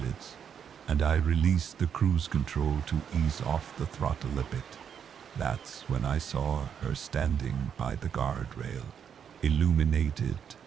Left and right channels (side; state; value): left; quieter; 8.0 dB